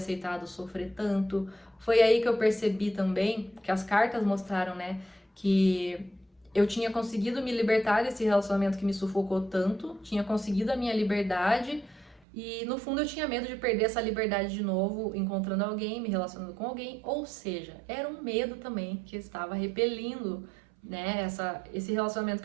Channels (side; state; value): left; drops out; at 12.2 s